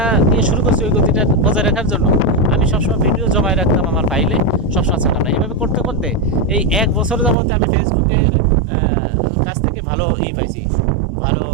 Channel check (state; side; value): drops out; left; at 7.4 s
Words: দিয়ে শুরু করছি, ওই গতিটা বজায় রাখার জন্য আমি সবসময় ভিডিও জমায় রাখতাম আমার ফাইলে, সবসময় ছাড়তাম না। এইভাবে করতে করতে এই 1 বছর যাবতে আমি ফেসবুকের কাছ থেকে ভালো পাইছি, ভালো